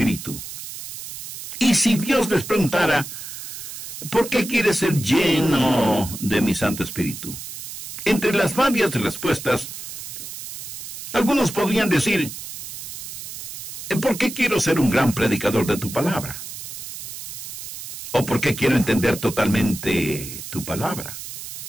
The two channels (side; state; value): right; noise; hiss, 10 dB below the sound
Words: Y si Dios les preguntara, ¿por qué quieres ser lleno de mi Santo Espíritu? Entre las varias respuestas, algunos podrían decir, ¿por qué quiero ser un gran predicador de tu palabra? ¿O por qué quiero entender totalmente tu palabra?